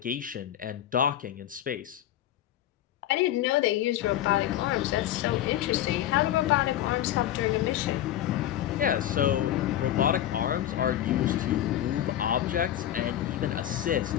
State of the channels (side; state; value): right; quieter; 12.2 dB